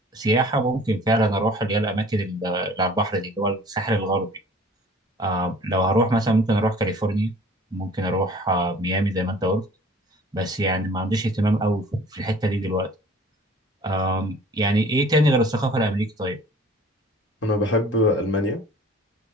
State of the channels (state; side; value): normal; both; correlation 0.49